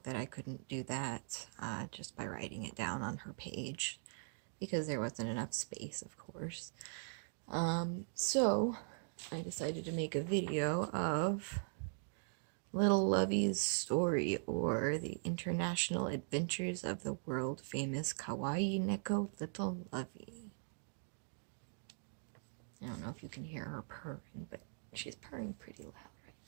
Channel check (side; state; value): left; silent; digital silence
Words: that I couldn't do that just by writing it down on her page because there wasn't enough space, of course. So I decided to make a video of Little Lovey's story, or the international adventures of the world famous Kawaii Neko Little Lovey. I don't know if you can hear her purring, but she's purring pretty loud right